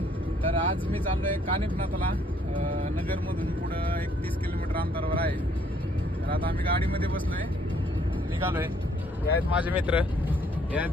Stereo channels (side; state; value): both; normal; correlation 0.65